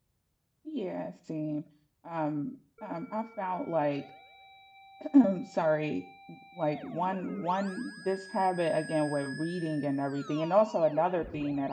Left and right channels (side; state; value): both; identical; correlation 1.00